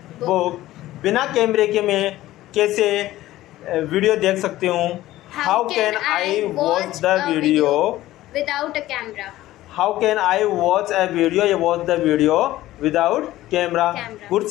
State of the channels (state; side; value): quieter; right; 15.6 dB